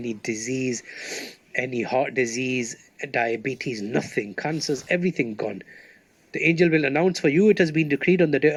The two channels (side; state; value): both; identical; correlation 1.00